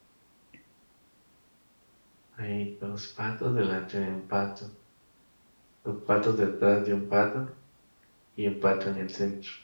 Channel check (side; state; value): both; inverted; correlation -1.00